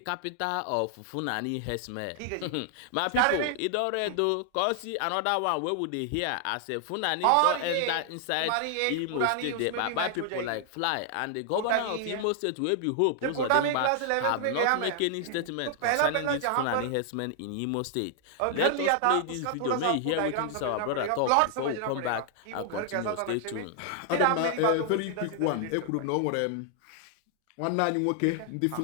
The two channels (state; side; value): different; both; correlation 0.00